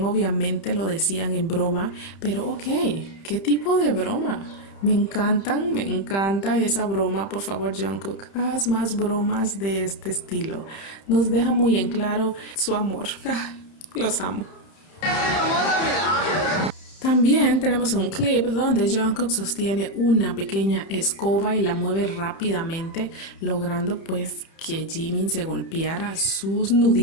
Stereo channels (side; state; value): right; late; 31 ms